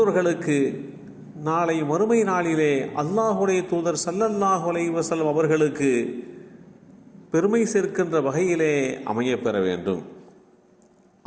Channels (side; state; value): both; identical; correlation 1.00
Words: நாளை மறுமை நாளிலே அல்லாஹுடைய தூதர் ஸல்லல்லாஹு அலைஹி வஸல்லம் அவர்களுக்கு பெருமை சேர்க்கின்ற வகையிலே அமையப்பெற வேண்டும்.